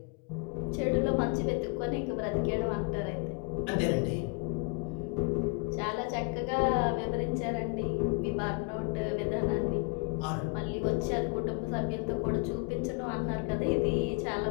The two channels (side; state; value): right; quieter; 34.4 dB